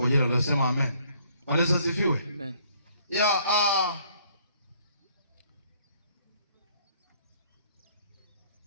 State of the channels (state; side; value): inverted; both; correlation -0.63